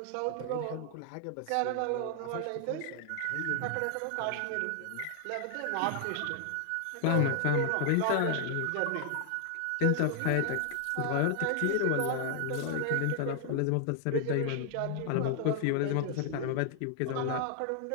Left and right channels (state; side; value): different; both; correlation 0.00